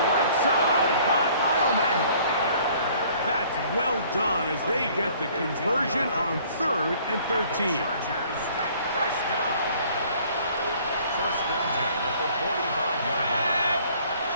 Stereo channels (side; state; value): both; inverted; correlation -0.56